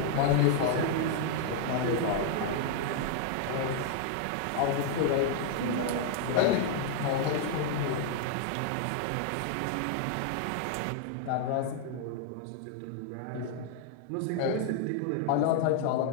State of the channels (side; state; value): both; different; correlation 0.00